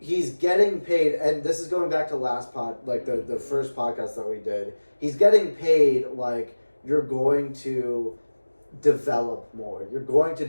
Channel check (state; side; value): inverted; both; correlation -1.00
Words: getting paid, and this is going back to last the first podcast that we did, he's getting paid like you're going to develop more. You're going to